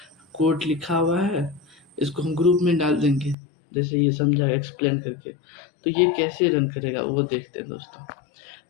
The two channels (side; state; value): right; drops out; at 3.4 s